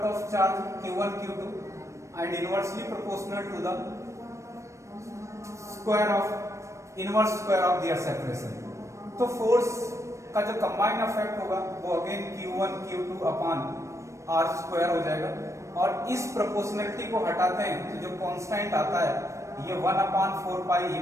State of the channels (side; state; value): left; late; 0.15 ms